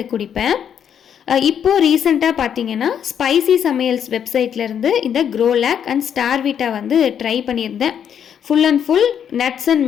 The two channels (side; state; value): right; quieter; 8.6 dB